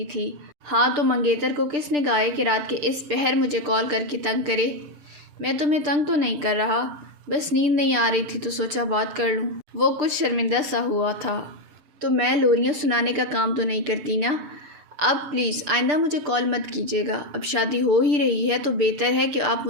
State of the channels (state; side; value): late; left; 6.8 ms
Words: تھی۔ ہاں تو منگیتر کو کس نے کہا ہے کہ رات کے اس پہر مجھے کال کر کے تنگ کرے؟ میں تمہیں تنگ تو نہیں کر رہا، بس نیند نہیں آ رہی تھی تو سوچا بات کر لوں۔ وہ کچھ شرمندہ سا ہوا تھا۔ تو میں لوریاں سنانے کا کام تو نہیں کرتی نا؟ اب پلیز آئندہ مجھے کال مت کیجیے گا۔ اب شادی ہو ہی رہی ہے تو بہتر ہے کہ آپ